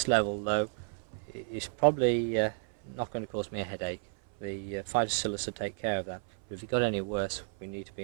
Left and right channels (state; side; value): silent; left; 56 dB below the other